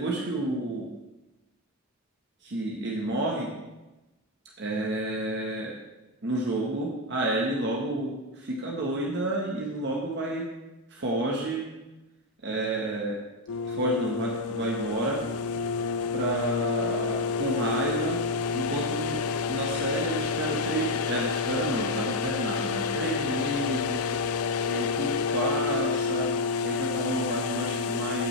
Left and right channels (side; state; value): both; normal; correlation 0.03